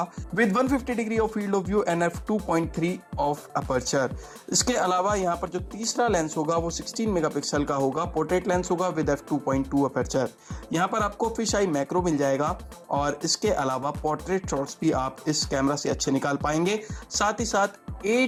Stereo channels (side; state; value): both; identical; correlation 1.00